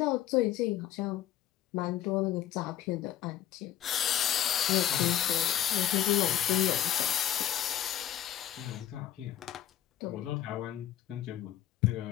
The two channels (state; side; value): quieter; right; 11.7 dB